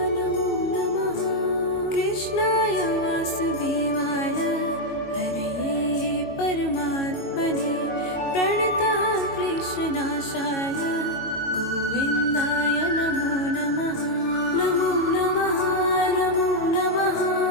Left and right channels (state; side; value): late; right; 22 ms